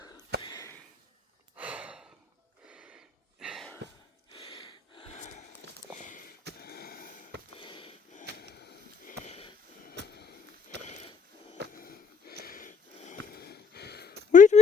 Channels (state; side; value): quieter; right; 5.7 dB